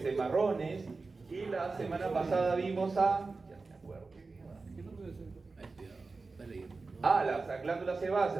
marrones, y la semana pasada vimos a... Ya me acuerdo. Ay, cuidado, está leyendo. Las glándulas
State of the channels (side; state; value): left; quieter; 3.9 dB